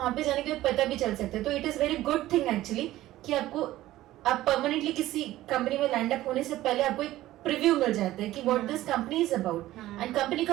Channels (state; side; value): quieter; left; 15.5 dB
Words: पे जाने के बाद पता भी चल सकता है। तो it is very good thing actually कि आपको आप परमानेंटली किसी कंपनी में लैंड अप होने से पहले आपको एक प्रीव्यू मिल जाता है कि what this company is about, and company